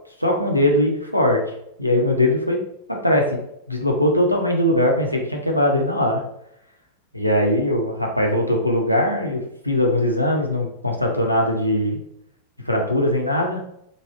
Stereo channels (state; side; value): inverted; both; correlation -0.43